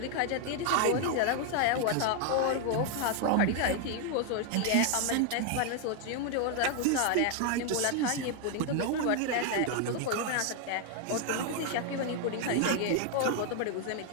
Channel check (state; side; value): different; both; correlation 0.00